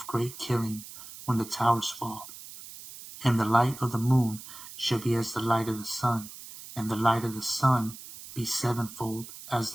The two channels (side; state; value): right; noise; hiss, 14 dB below the sound